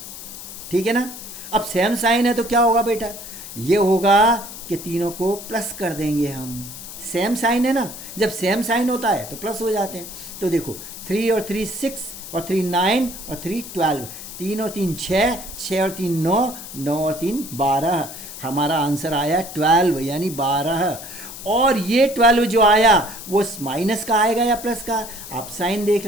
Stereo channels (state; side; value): noise; left; hiss, 12 dB below the sound